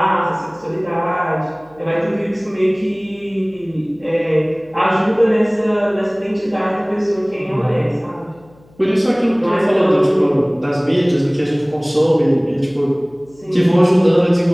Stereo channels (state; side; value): noise; left; hum, 29 dB below the sound